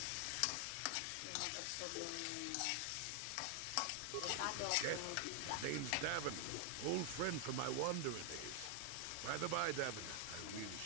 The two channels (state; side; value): different; both; correlation 0.00